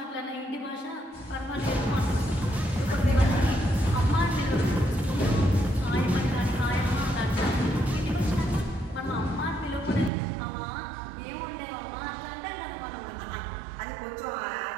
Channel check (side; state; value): left; drops out; at 10.1 s